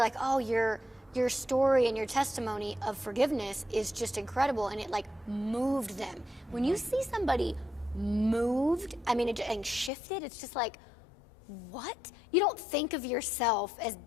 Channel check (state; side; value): drops out; right; at 9.9 s